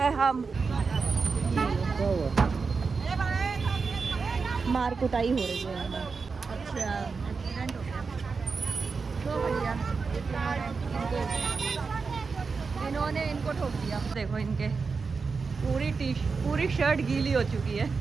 हम। मार कुटाई हो रही है। अच्छा, एक्सीडेंट हो गया तो भैया इन्होंने इनको ठोक दिया। देखो इनके पूरी शर्ट गीली हो चुकी है,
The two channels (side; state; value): left; quieter; 4.8 dB